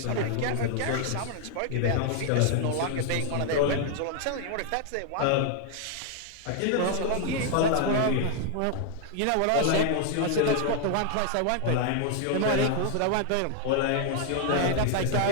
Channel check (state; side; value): different; both; correlation 0.00